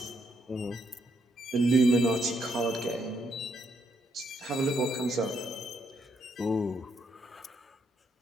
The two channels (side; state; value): both; normal; correlation 0.75